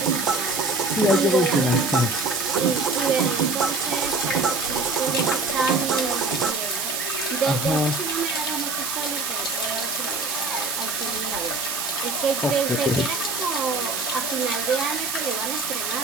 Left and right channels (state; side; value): noise; right; hiss, 2 dB below the sound